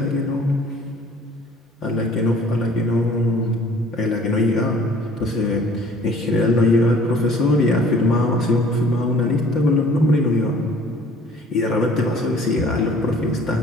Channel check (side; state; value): both; normal; correlation 0.53